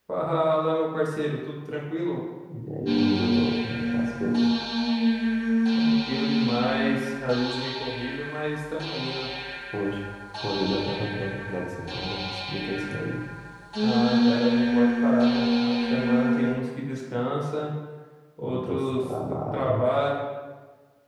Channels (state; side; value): identical; both; correlation 1.00